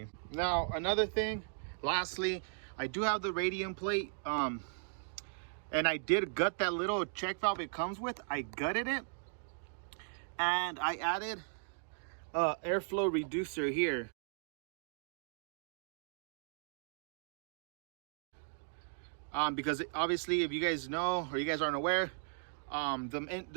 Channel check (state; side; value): silent; left; digital silence